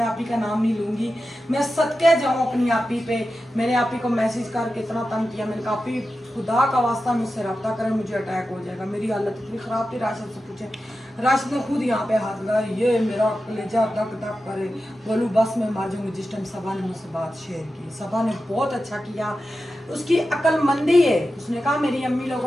आपी का नाम नहीं लूँगी, मैं सदके जाऊँ अपनी आपी पे। मैंने आपी को मैसेज करके इतना तंग किया, मैंने कहा आपी खुदा का वास्ता मुझसे रब्ता करें, मुझे अटैक हो जाएगा। मेरी हालत इतनी ख़राब थी, राशिद से पूछे, राशिद ने खुद यहाँ पे हाथ लगाया, ये मेरा कलेजा धक धक करे, बोलूँ बस मैं मर जाऊँगी। जिस टाइम सबा ने मुझसे बात शेयर की, सबा ने बहुत अच्छा किया, उसकी अक्लमंदी है। उसने कहा मेरी अम्मी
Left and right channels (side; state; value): both; normal; correlation 0.92